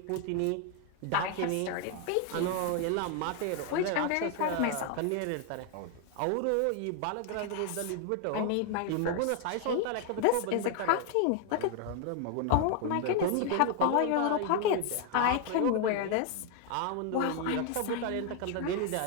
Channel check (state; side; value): different; both; correlation 0.01